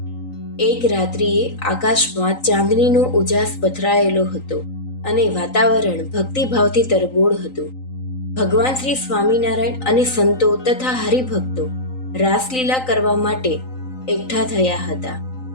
એક રાત્રિએ આકાશમાં ચાંદનીનો ઉજાસ પથરાયેલો હતો અને વાતાવરણ ભક્તિભાવથી તરબોળ હતું. ભગવાન શ્રી સ્વામિનારાયણ અને સંતો તથા હરિભક્તો રાસલીલા કરવા માટે એકઠા થયા હતા.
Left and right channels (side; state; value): right; late; 3.9 ms